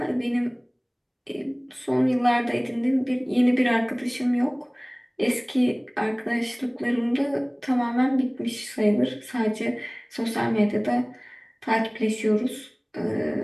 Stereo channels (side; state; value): both; identical; correlation 1.00